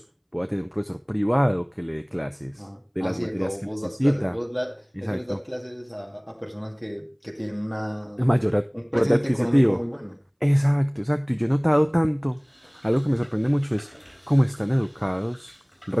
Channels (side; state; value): both; identical; correlation 1.00